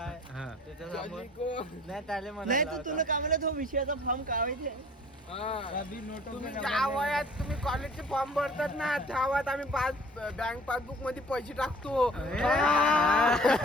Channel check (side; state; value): both; normal; correlation 0.50